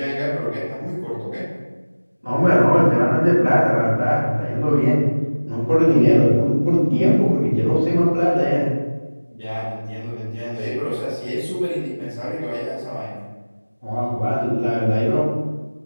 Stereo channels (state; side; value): inverted; both; correlation -1.00